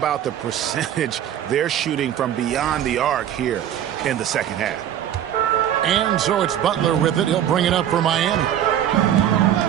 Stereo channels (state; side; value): quieter; left; 10.6 dB